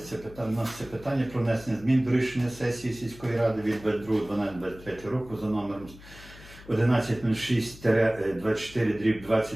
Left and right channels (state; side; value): noise; left; hum, 19 dB below the sound